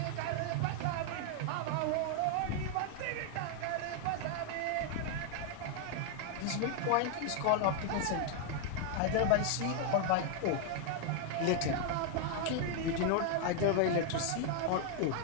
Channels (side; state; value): both; different; correlation 0.00